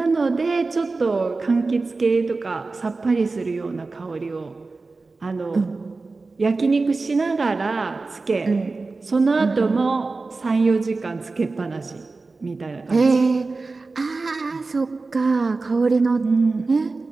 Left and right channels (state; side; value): quieter; left; 3.8 dB